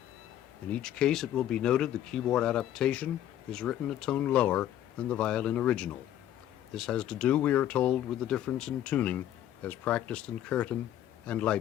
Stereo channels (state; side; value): quieter; right; 11.7 dB